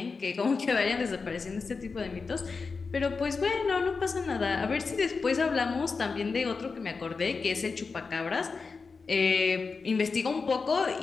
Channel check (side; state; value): right; quieter; 4.6 dB